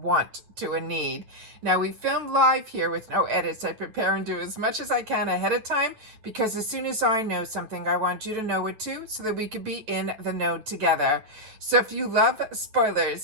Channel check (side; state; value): left; late; 9.1 ms